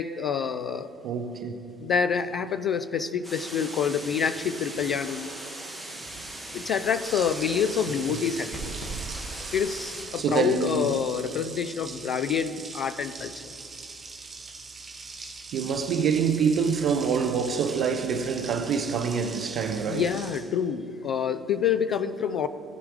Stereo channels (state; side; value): normal; both; correlation 0.51